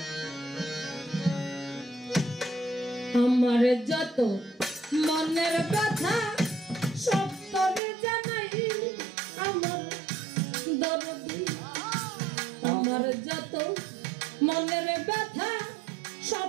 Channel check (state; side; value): drops out; left; at 7.8 s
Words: আমার যত মনের কথা সব তোরে জানাই আমার দরদি আমার যত মনের ব্যথা